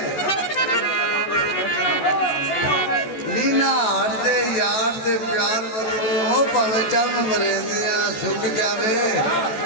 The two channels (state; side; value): late; right; 14 ms